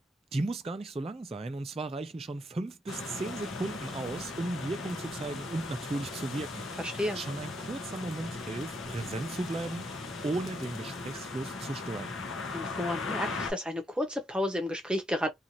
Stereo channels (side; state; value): both; normal; correlation 0.76